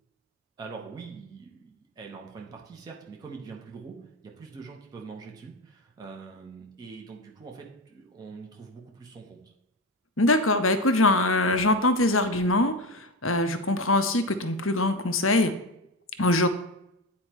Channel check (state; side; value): normal; both; correlation 0.19